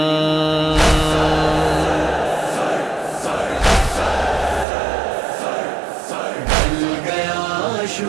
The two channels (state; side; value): drops out; left; at 4.7 s